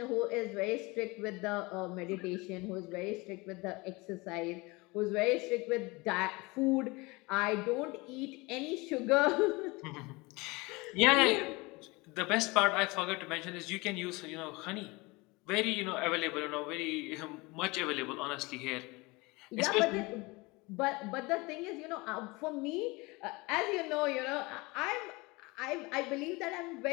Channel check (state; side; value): quieter; right; 24.5 dB